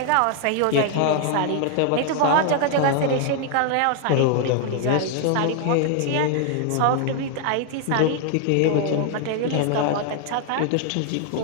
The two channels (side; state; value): both; different; correlation 0.00